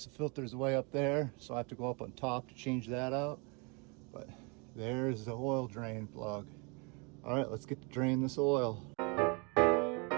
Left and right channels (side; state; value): left; quieter; 31.8 dB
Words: the filter's way up there, so I have to go up on top to change that out. But there's the oil drain plug. All right, let's get to drain this oil.